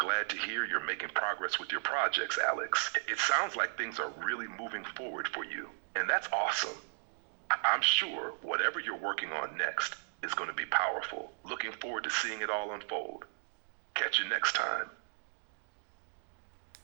to hear you're making progress with your projects, Alex. It sounds like things are really moving forward for you, and that's awesome. I'm sure whatever you're working on next is going to be powerful. Looking forward to seeing it all unfold. Catch you next time.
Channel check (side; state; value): left; silent; digital silence